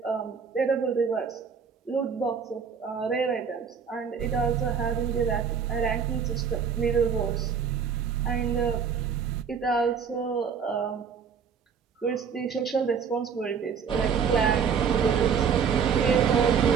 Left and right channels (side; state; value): left; quieter; 6.6 dB